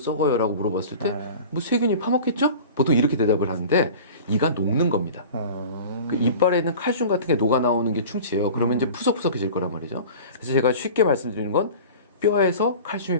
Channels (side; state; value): both; inverted; correlation -0.38